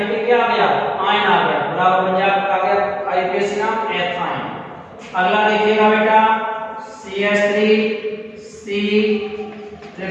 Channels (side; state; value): both; identical; correlation 1.00